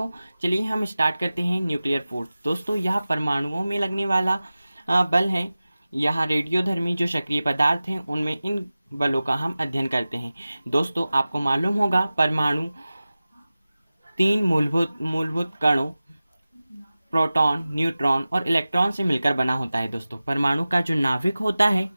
चलिए हम स्टार्ट करते हैं न्यूक्लियर फोर्स। दोस्तों, यह परमाणुओं में लगने वाला बल है। यहाँ रेडियोधर्मी जो सक्रिय पदार्थ हैं उनमें इन बलों का हम अध्ययन करते हैं। दोस्तों, आपको मालूम होगा परमाणु 3 मूलभूत कणों प्रोटॉन, न्यूट्रॉन और इलेक्ट्रॉन से मिलकर बना होता है। दोस्तों, परमाणु का जो नाभिक होता है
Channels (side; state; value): both; inverted; correlation -0.96